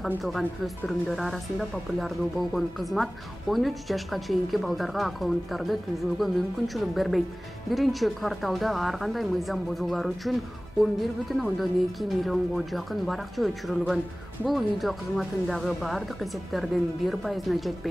камтылган. Өспүрүмдөр арасында популярдуу болгон кызмат 13 жашка чейинки балдарга аккаунттарды түзүүгө мүмкүнчүлүк бербейт. 1-кварталда ар кандай мыйзам бузуулар үчүн 11,2 миллионго жакын баракча өчүрүлгөн. Бул видео кызматындагы бардык эсептердин 1%-на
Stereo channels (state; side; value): normal; both; correlation 0.98